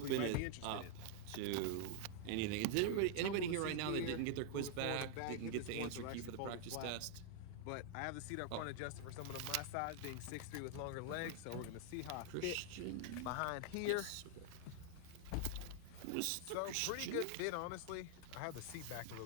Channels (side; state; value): both; different; correlation 0.00